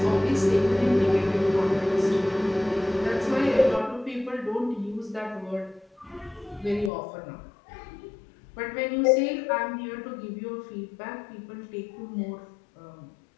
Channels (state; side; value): drops out; right; at 6.9 s